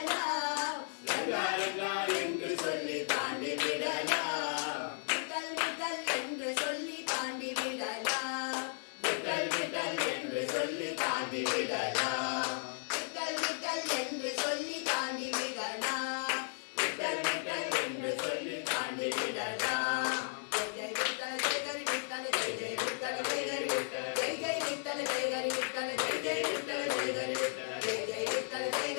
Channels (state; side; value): silent; right; 55 dB below the other